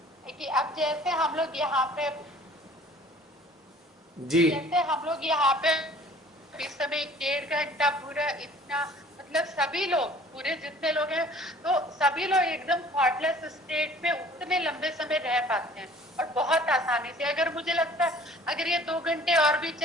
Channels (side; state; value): both; normal; correlation 0.51